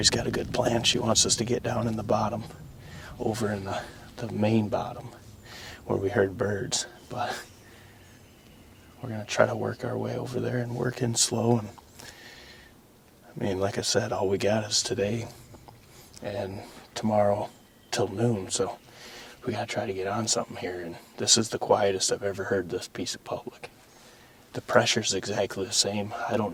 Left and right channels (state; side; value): identical; both; correlation 1.00